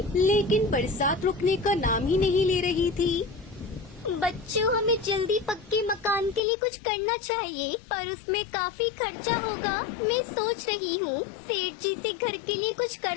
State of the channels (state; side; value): drops out; right; at 6.4 s